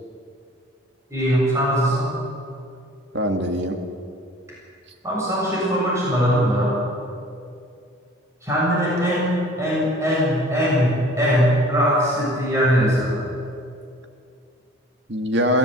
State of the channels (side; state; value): both; normal; correlation 0.49